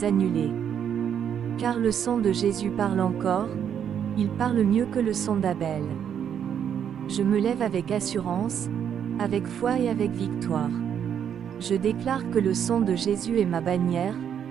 annuler. Car le sang de Jésus parle encore, il parle mieux que le sang d'Abel. Je me lève avec assurance, avec foi et avec victoire. Je déclare que le sang de Jésus est ma bannière,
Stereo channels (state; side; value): quieter; left; 8.6 dB